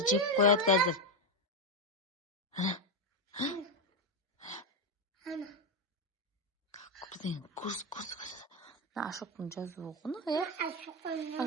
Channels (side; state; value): both; normal; correlation 0.07